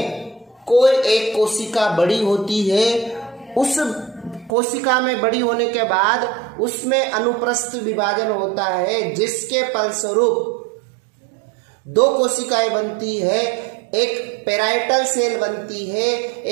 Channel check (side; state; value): left; drops out; at 4.5 s